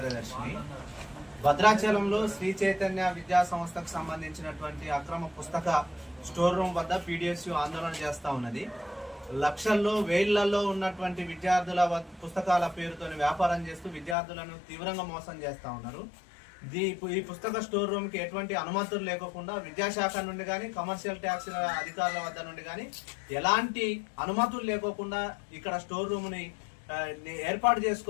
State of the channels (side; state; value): right; drops out; at 14.2 s